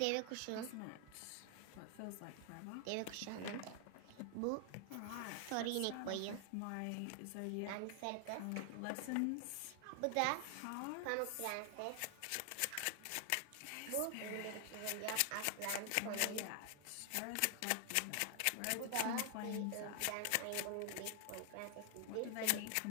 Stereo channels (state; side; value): different; both; correlation 0.00